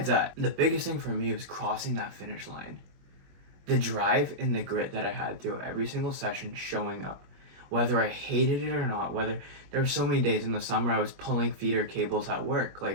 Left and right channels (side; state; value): left; late; 21 ms